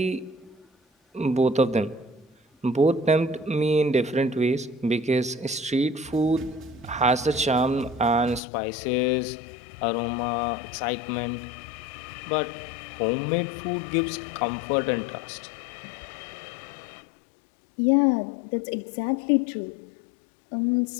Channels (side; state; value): right; drops out; at 8.4 s